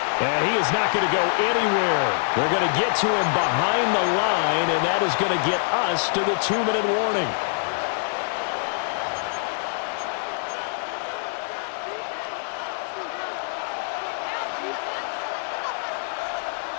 And he is not going to go anywhere. They're going to get to him behind the line, and that is going to get us to the 2-minute warning.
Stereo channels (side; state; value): right; silent; digital silence